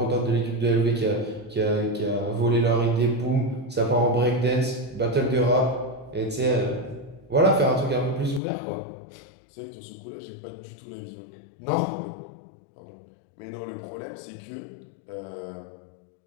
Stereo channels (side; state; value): right; drops out; at 8.4 s